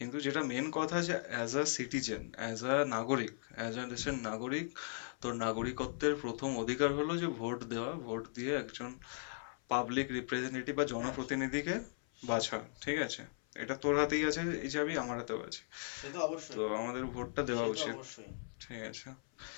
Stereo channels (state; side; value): silent; right; 52 dB below the other